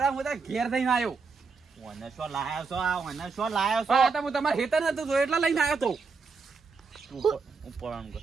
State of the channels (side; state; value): left; quieter; 4.8 dB